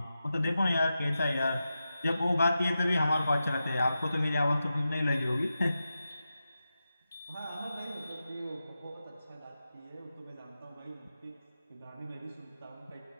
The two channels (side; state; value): both; inverted; correlation -0.91